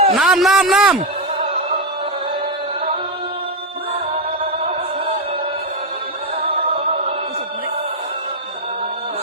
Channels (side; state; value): both; normal; correlation 0.05